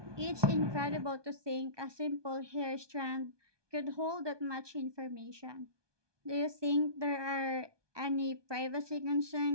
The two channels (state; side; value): late; left; 1.2 ms